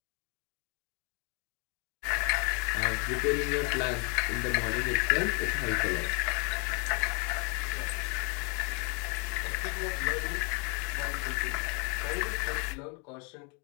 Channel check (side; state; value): right; quieter; 34.0 dB